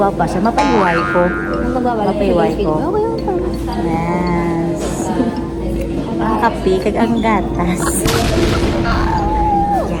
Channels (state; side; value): identical; both; correlation 1.00